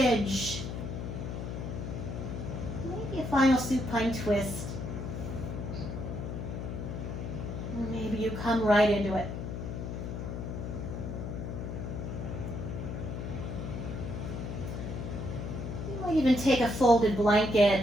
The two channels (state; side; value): noise; left; hum, 5 dB below the sound